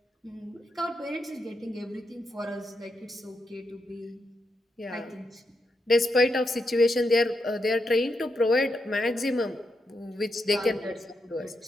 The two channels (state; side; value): normal; both; correlation 0.84